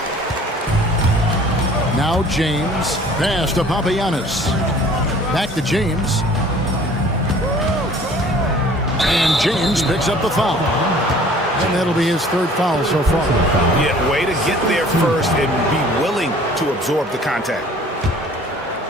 Now James. Pass to Papagiannis. Back to James. And James picks up the foul. And that'll be his 3rd foul so far. Yeah, way to get there first and be willing to absorb the contact.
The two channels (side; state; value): both; normal; correlation 0.51